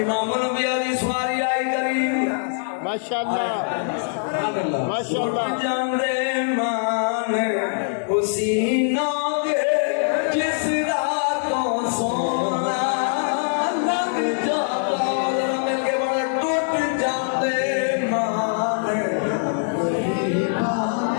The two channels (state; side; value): silent; right; 64 dB below the other